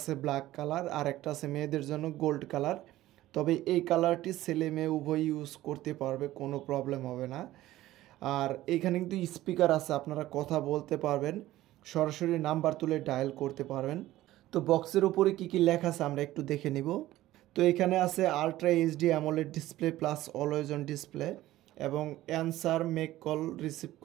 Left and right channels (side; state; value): left; quieter; 15.5 dB